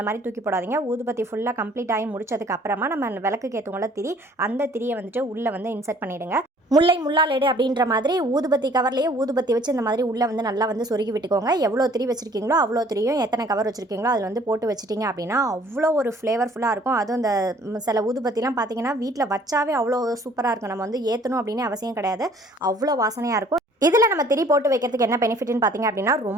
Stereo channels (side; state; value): both; normal; correlation 0.56